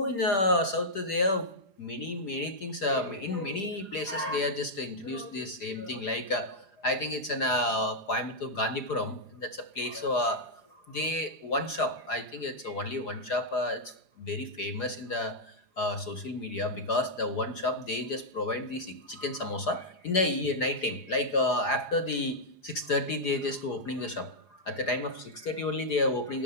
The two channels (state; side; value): late; right; 4.9 ms